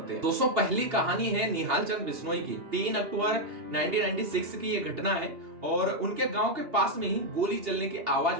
हैं। दोस्तों, पहली कहानी है निहाल चंद बिश्नोई की। 3 अक्टूबर 1996 की ये घटना है और उनके गांव के पास में ही गोली चलने की आवाज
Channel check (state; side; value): late; left; 2.8 ms